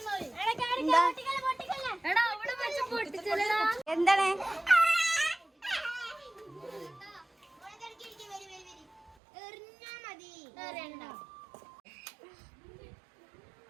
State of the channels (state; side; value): drops out; left; at 9.2 s